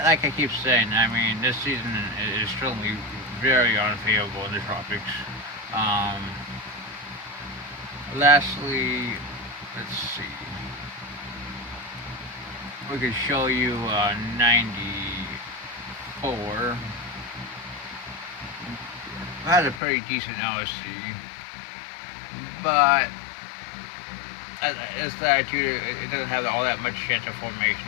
like I keep saying, I mean, this season is certainly very unfavorable in the tropics. Lastly, let's see. We could show you 94. That's a pretty decent LSC, but this latitude, it doesn't have all that much chance of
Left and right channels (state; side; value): drops out; right; at 19.8 s